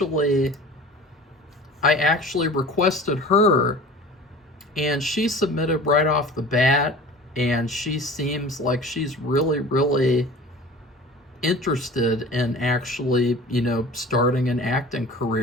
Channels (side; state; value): both; normal; correlation 0.41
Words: requested her, and she submitted right off the bat, and she seems like she's really, really interested in actually, starting an acting